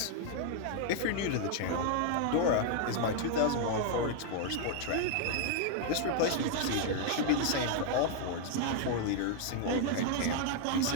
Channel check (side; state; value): both; different; correlation 0.00